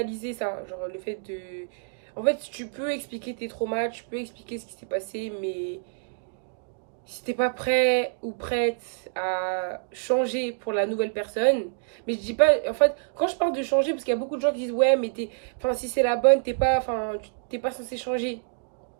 ça. Genre, le fait de. En fait, tu peux expliquer tes traumas, tu peux expliquer ce qui s'est passé, mais si t'es pas prêt ou prête à changer pour la nouvelle personne, mais je dis pas, en fait, quand je parle de changer, parce qu'il y a beaucoup de gens qui disent, ouais, mais enfin, si c'est la bonne, t'es pas censé changer.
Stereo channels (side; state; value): left; silent; digital silence